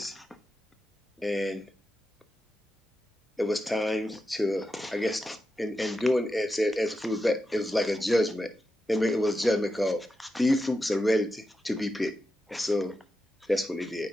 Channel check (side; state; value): both; normal; correlation 0.89